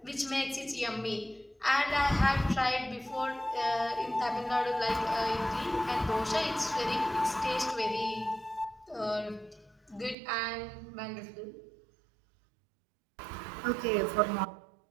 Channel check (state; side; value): drops out; left; at 10.2 s